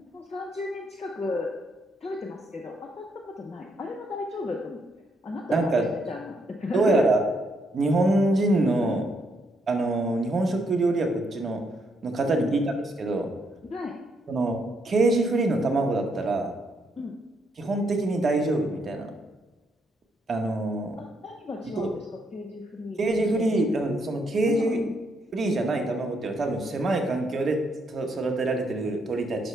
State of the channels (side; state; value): both; normal; correlation 0.75